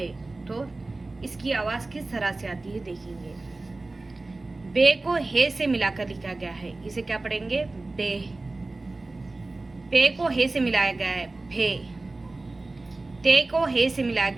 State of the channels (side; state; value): left; quieter; 3.2 dB